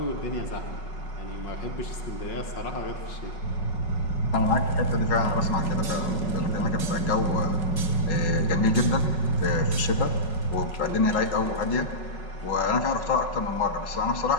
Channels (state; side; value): late; right; 5.4 ms